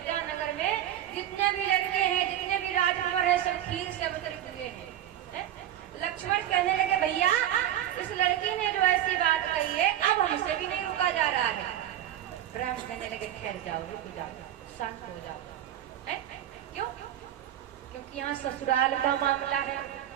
नगर में जितने भी लड़के हैं, जितने भी राजकुमार हैं, सब खीर से अवतरित हुए हैं। लक्ष्मण कहने लगे, भैया इस लड़की ने जो ऐसी बात कही है अब हमसे भी नहीं रुका जा रहा है। राम कहने लगे, ठहर जाओ, रुक जाओ, शांत हो जाओ। क्यों? क्योंकि यहाँ ससुराल का मामला है,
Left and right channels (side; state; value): left; quieter; 11.7 dB